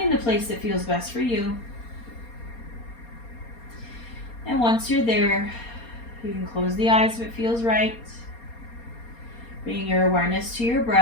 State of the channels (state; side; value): late; right; 4.3 ms